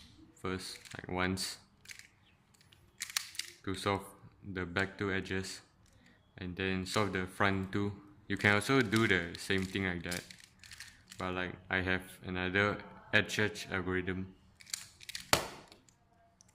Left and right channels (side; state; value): both; identical; correlation 1.00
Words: first, like once, to solve the back two edges, and then solve the front two. You can also do the same thing like that, but like I have another edge algorithm.